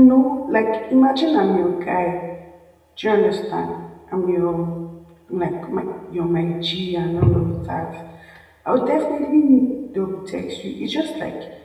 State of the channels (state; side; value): identical; both; correlation 1.00